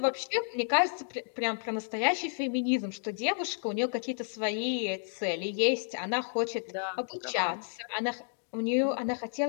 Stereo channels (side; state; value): right; silent; digital silence